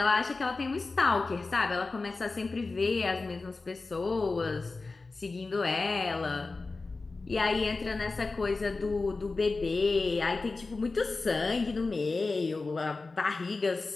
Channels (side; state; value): right; quieter; 3.7 dB